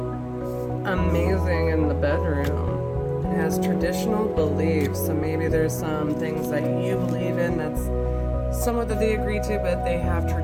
amazing in the bedroom. It has traditional beliefs, so maybe there's some things that you believe in that's somewhat that they agree to, but they have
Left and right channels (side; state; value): both; identical; correlation 1.00